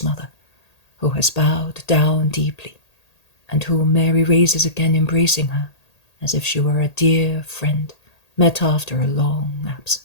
mother, who has bowed down deeply, and whom Mary raises again, embracing her as if she were a dear friend met after a long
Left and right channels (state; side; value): late; right; 1.8 ms